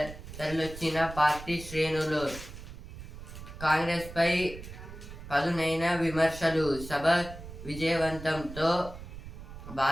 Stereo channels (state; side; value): noise; right; rumble, 13 dB below the sound